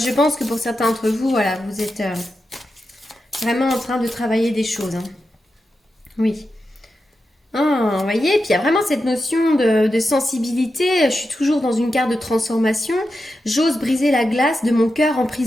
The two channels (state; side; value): normal; both; correlation 0.89